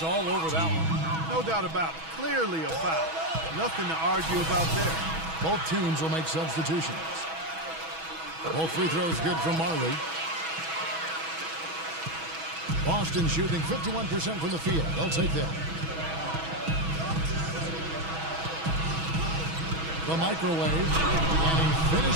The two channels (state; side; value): late; left; 6.2 ms